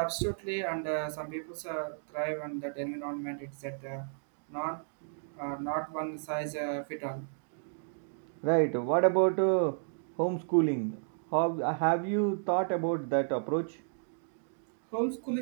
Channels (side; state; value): left; silent; digital silence